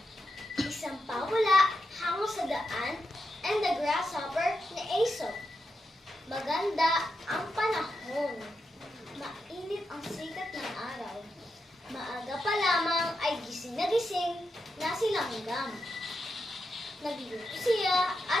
isang pawala hango sa daan, and the grasshopper ni Aesop. Maganda ang panahon, mainit ang sikat ng araw. Maaga pa lamang ay gising na si langgam. Nagluto siya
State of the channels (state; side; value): normal; both; correlation 0.86